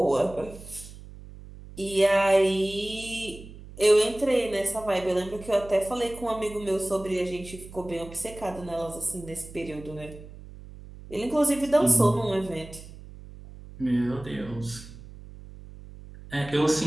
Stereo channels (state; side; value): noise; right; hum, 16 dB below the sound